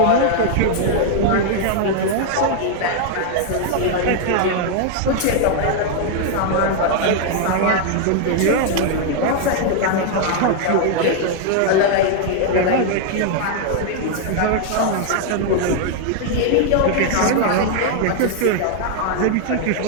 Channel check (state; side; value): different; both; correlation 0.00